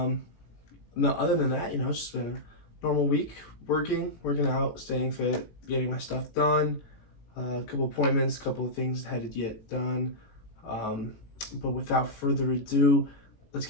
No, other than that, it's just been a normal week, working out, staying fit, getting my stuff done. A couple appointments, a couple of things had to get done. But without further ado, let's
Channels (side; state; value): right; late; 18 ms